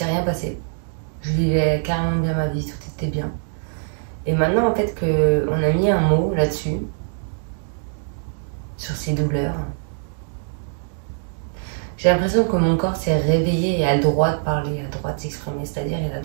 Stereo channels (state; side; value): silent; left; 64 dB below the other